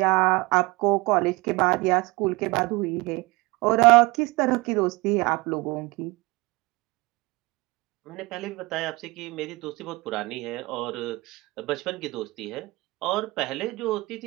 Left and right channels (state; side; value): quieter; left; 23.7 dB